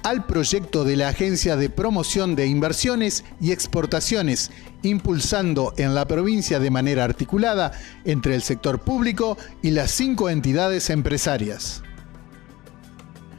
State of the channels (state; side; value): quieter; right; 18.7 dB